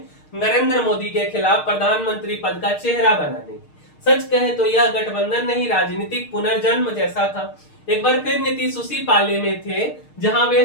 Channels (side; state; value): right; late; 6.5 ms